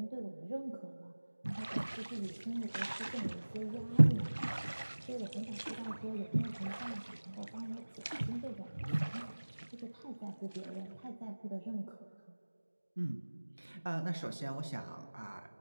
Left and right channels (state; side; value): inverted; both; correlation -1.00